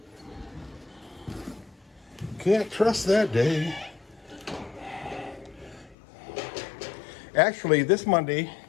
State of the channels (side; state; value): right; drops out; at 6.0 s